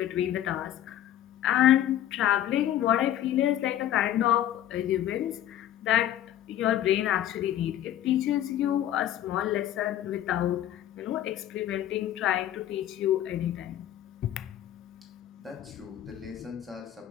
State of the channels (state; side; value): quieter; right; 12.0 dB